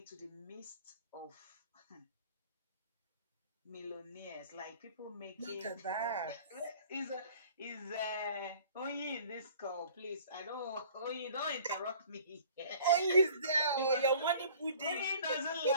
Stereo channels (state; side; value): inverted; both; correlation -0.50